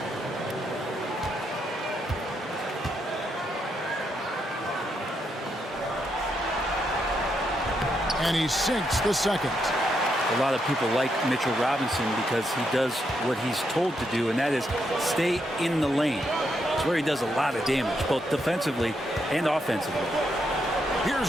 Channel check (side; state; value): both; normal; correlation 0.79